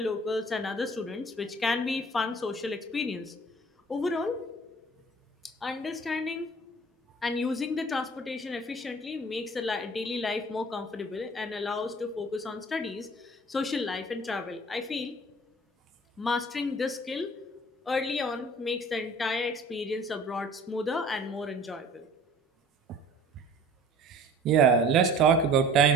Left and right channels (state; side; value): normal; both; correlation 0.48